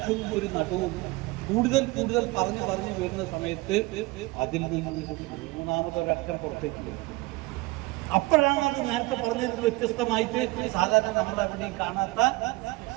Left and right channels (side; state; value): left; quieter; 22.2 dB